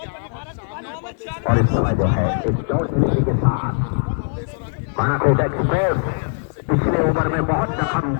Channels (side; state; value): right; silent; digital silence